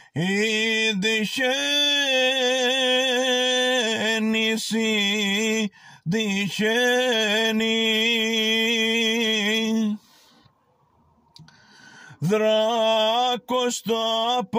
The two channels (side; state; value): both; identical; correlation 1.00